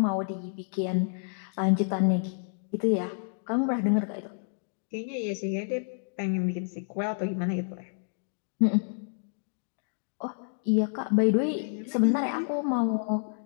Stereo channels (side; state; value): right; silent; digital silence